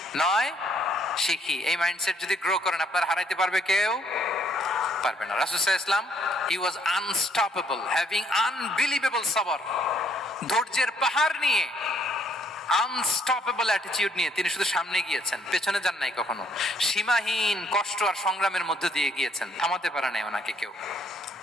নয় শিখি। এই মাইন্ডসেট যদি গ্রো করেন আপনার হারাইতে পারবে কেউ? পারবে না। রাসূল সাল্লাল্লাহু আলাইহি ওয়াসাল্লাম he was unstoppable, having unbelievable sabr, ধৈর্যের পাহাড় নিয়ে, আনস্টপেবল অ্যাটিটিউড নিয়ে তিনি শুধু সামনে গিয়েছেন, পেছনে যান নাই কখনো। সীমাহীন কষ্ট আর সংগ্রামের মধ্য দিয়ে গিয়েছেন, থামাতে পারে নাই ওনাকে কেউ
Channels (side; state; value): both; normal; correlation 0.67